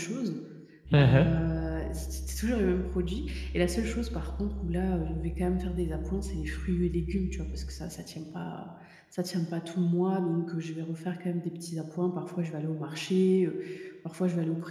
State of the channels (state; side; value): identical; both; correlation 1.00